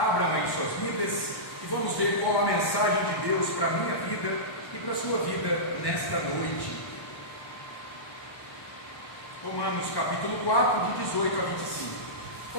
aí suas Bíblias e vamos ver qual a mensagem de Deus para a minha vida e para a sua vida nesta noite. Romanos, capítulo 4, de 18 a 25.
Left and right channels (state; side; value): late; right; 1.1 ms